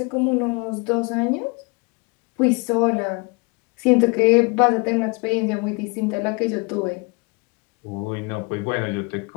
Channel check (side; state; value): right; quieter; 29.9 dB